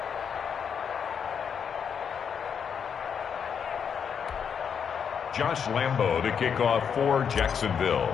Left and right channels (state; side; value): quieter; right; 7.2 dB